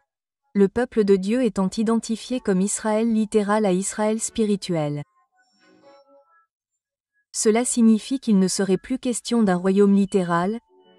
le peuple de Dieu étant identifié comme Israël littéral à Israël spirituel. Cela signifie qu'il ne serait plus question d'un royaume littéral,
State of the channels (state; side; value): identical; both; correlation 1.00